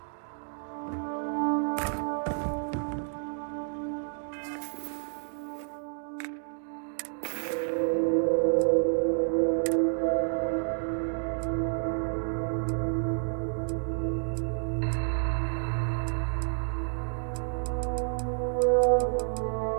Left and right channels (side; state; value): left; silent; digital silence